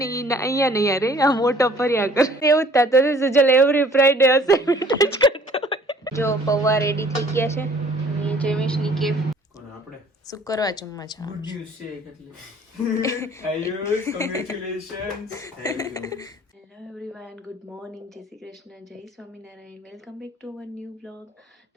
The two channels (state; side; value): normal; both; correlation 0.55